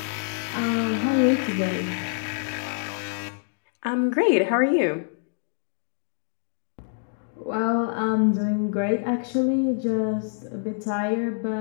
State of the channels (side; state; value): right; silent; digital silence